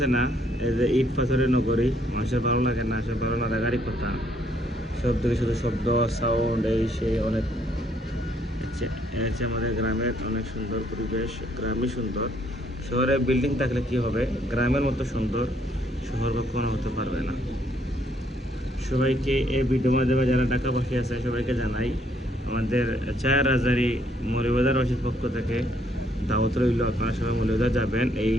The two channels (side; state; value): both; normal; correlation 0.69